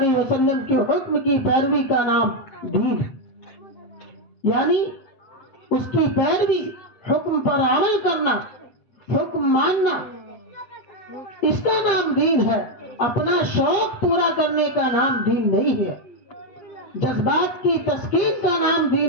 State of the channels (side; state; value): right; late; 7.6 ms